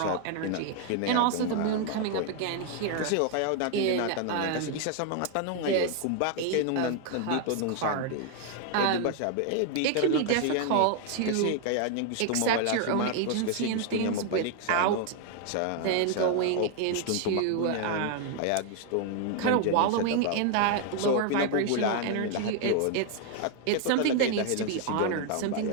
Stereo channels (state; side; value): different; both; correlation 0.00